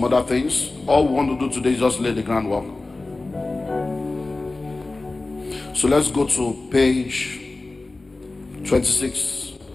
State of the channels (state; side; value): quieter; right; 3.3 dB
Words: other things. All we want to do today is just lay the groundwork. So let's go to page 26.